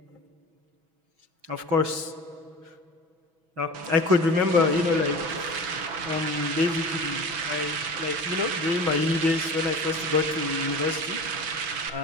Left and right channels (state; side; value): late; left; 6.1 ms